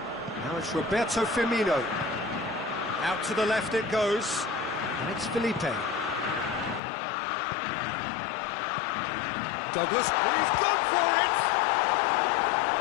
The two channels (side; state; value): right; drops out; at 6.8 s